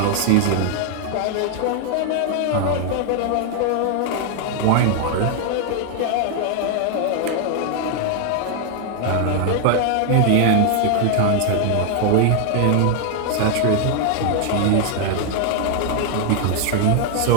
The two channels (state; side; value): different; both; correlation 0.00